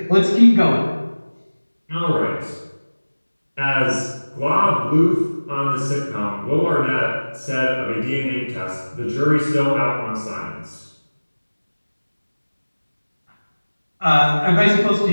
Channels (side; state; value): both; inverted; correlation -1.00